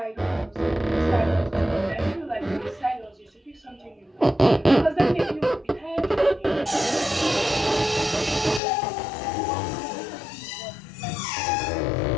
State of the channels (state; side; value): drops out; right; at 8.6 s